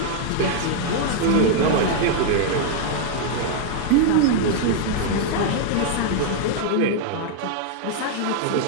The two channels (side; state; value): both; different; correlation 0.00